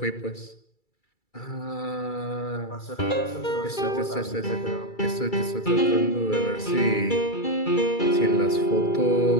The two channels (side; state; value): right; late; 2.3 ms